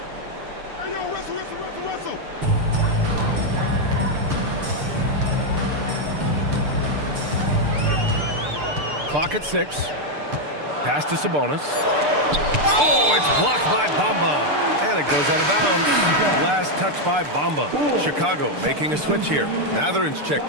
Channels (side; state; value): left; late; 6.8 ms